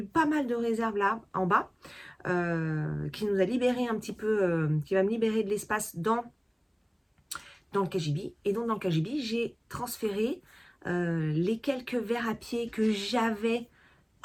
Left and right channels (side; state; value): both; identical; correlation 1.00